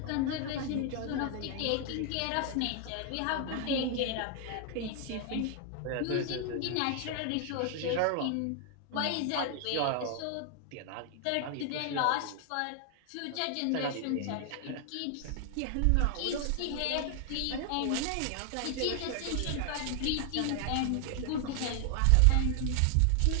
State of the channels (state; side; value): different; both; correlation 0.00